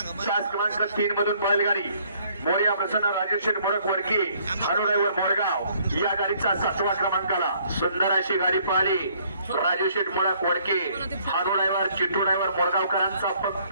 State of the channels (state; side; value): inverted; both; correlation -0.63